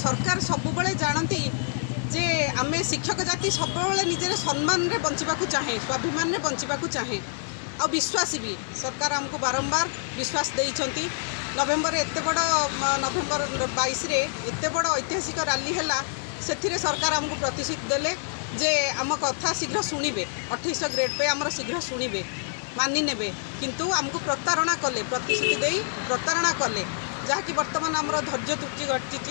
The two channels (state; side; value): silent; right; digital silence